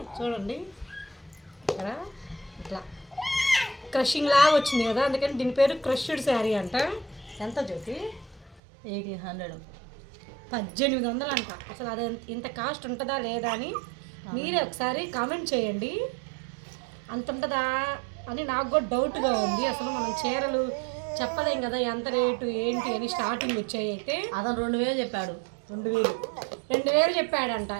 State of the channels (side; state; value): left; drops out; at 8.6 s